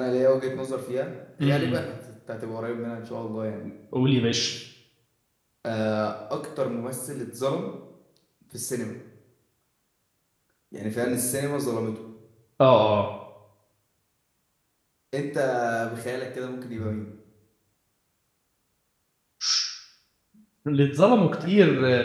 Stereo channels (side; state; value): both; identical; correlation 1.00